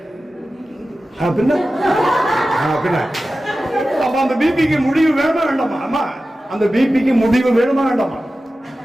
பின்ன அப்ப அந்த பிபிக்கு முடிவு வேணுமா வேண்டாமா? ஆமா, அந்த பிபிக்கு முடிவு வேணுமா வேண்டாமா?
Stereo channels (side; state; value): both; normal; correlation 0.94